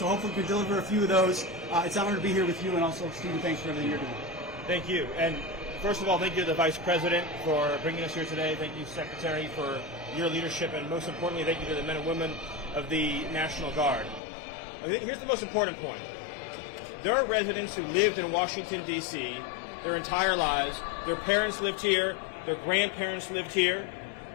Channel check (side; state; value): right; drops out; at 14.2 s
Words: hopefully we can deliver a few of those. It's an honor to be here with you, and also, Stephen, thanks for everything you're doing. Thank you. And first of all, thank you to the Vice President for bringing us here today. Thank you, Secretary, for your leadership, and most importantly, thank you to the men and women of the National Guard. Here's the most important point. There are residents who lived in Washington, D.C. their entire lives. Their parents lived here. Their grandparents lived here.